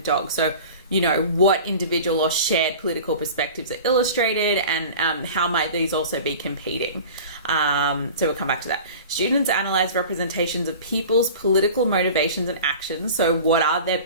So, you know, what individual or shared political perspectives are illustrated, and how might these also be competing? So we'll come back to that. Students analyze representations of people's political motivations and actions. So what are their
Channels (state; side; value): inverted; both; correlation -0.38